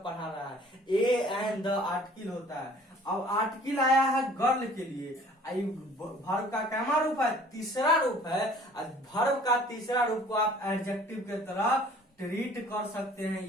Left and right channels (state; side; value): normal; both; correlation 0.52